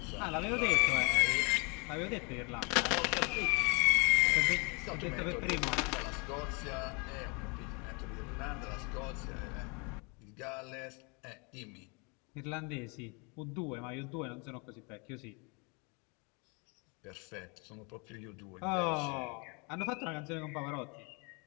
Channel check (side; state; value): right; quieter; 31.8 dB